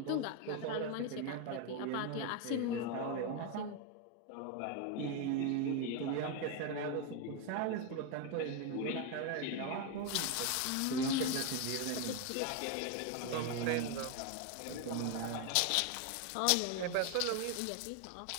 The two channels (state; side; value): different; both; correlation 0.01